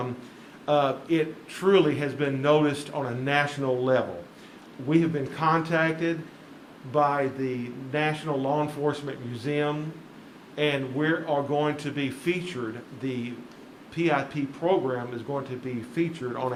it truly has been noticed on a national level. We have been contacted by the National Law Enforcement Museum, and we are going to be featured. The PIP program is going to be featured on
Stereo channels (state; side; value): identical; both; correlation 1.00